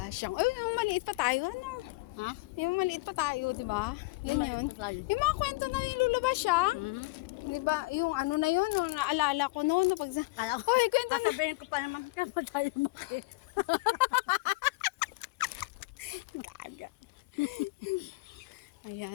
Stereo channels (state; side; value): quieter; right; 23.2 dB